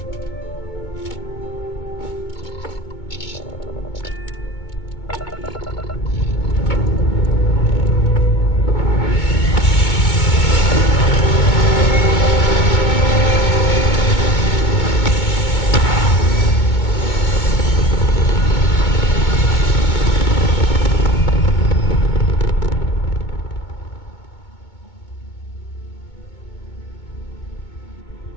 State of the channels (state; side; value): late; right; 2.2 ms